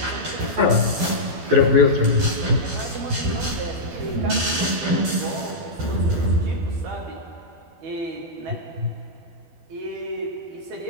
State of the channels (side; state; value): left; late; 12 ms